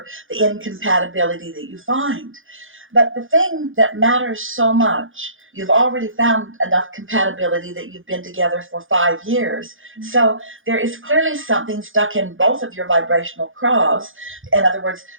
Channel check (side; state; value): left; late; 0.58 ms